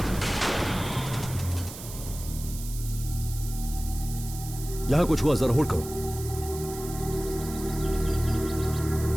यहां कुछ हुआ, जरा होल्ड करो।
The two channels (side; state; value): right; noise; hiss, 12 dB below the sound